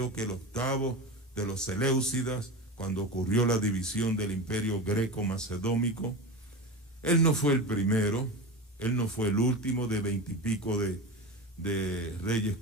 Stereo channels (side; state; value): both; normal; correlation 0.25